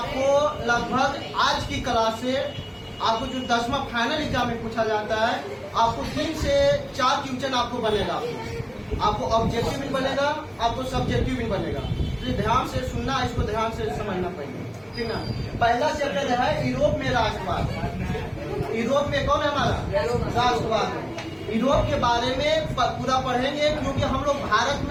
लगभग आज की क्लास से आपको जो 10वां फाइनल एग्जाम में पूछा जाता है, आपको 3 से 4 क्वेश्चन आपको बनेगा। आपको ऑब्जेक्टिव भी बनेगा, आपको सब्जेक्टिव भी बनेगा। तो ध्यान से सुनना, इसको ध्यान से समझना पड़ेगा, ठीक ना। पहला चैप्टर है यूरोप में राष्ट्रवाद। यूरोप में कौन है हमारा? राष्ट्रवाद। यूरोप के बारे में पूरा पढ़ेंगे, क्योंकि हम लोग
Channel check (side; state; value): both; identical; correlation 1.00